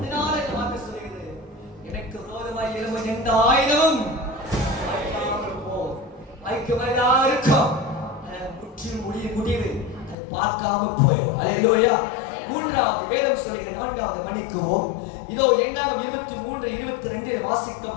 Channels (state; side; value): drops out; right; at 10.2 s